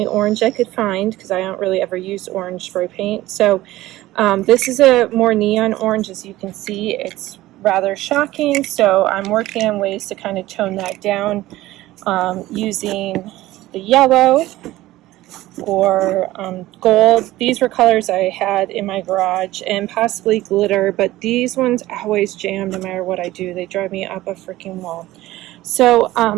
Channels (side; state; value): left; quieter; 16.6 dB